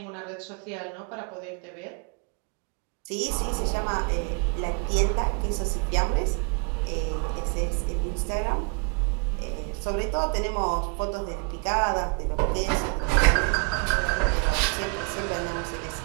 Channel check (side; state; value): left; quieter; 36.1 dB